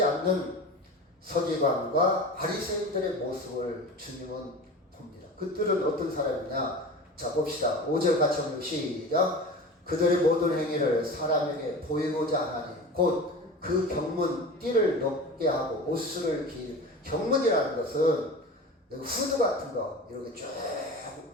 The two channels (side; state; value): both; normal; correlation 0.33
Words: 않는 서기관과 바리새인들의 모습을 주님은 봅니다. 그들은 어떤 사람이냐? 자, 봅시다. 5절 같이 한번 시작. 그들의 모든 행위를 사람에게 보이고자 하나니 곧 그 경문 띠를 높게 하고 옷을 경문이라는 것은 후드 같은 거 이렇게 쭉